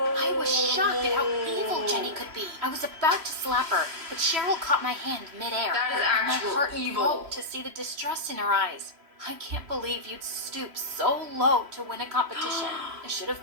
was shocked at how evil Jenny could be. I was about to slap her, but Cheryl caught my hand midair. That is and actual my heart evil. broke to see the distrust in her eyes. I can't believe you'd stoop so low to win a competition. I should have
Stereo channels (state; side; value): late; left; 3.0 ms